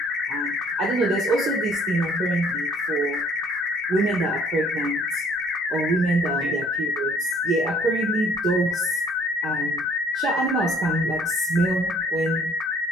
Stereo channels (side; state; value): both; normal; correlation 0.58